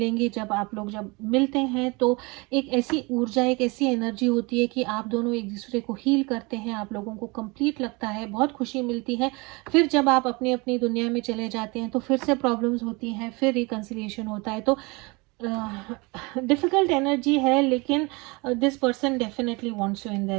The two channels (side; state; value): left; quieter; 26.7 dB